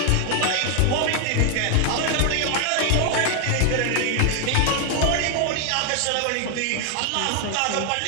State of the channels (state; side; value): different; both; correlation 0.00